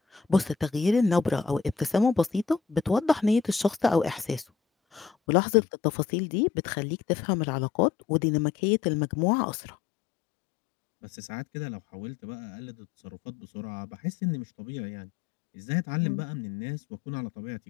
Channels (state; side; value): drops out; right; at 5.1 s